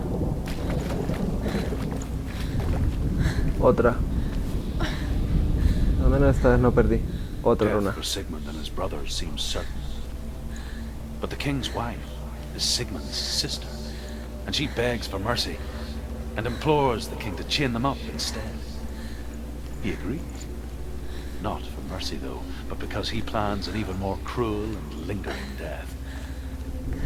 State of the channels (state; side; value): identical; both; correlation 1.00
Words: Otra. Al menos esta vez no perdí. Otra runa. Death for Sigmund and his brothers seems certain. But the king's wife is Sigmund's sister, and she begs for mercy and implores the king to chain them up instead. He agrees. Not for mercy, though, but because he plans an even more cruel and lingering death.